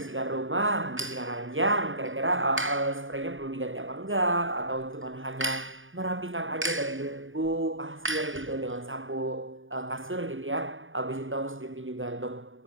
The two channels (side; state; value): left; late; 0.58 ms